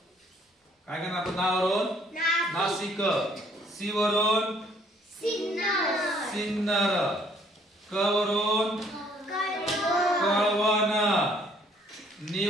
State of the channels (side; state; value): both; normal; correlation 0.63